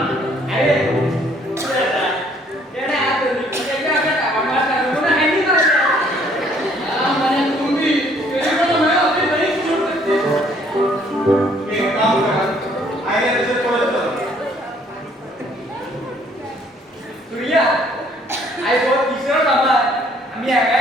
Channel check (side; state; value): both; normal; correlation 0.62